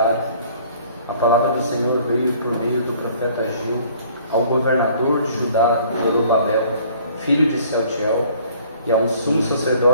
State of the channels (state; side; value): inverted; both; correlation -0.55